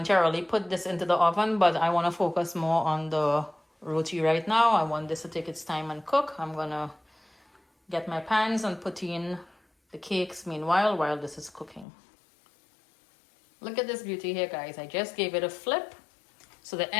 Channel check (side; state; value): right; drops out; at 11.9 s